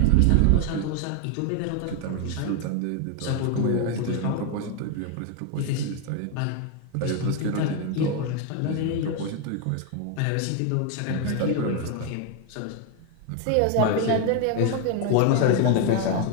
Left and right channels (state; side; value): different; both; correlation 0.01